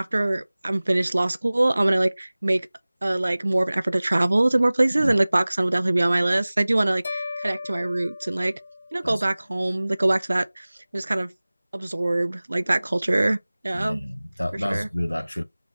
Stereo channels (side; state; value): both; inverted; correlation -0.99